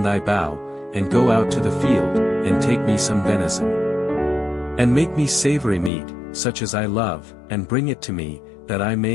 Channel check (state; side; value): drops out; right; at 5.9 s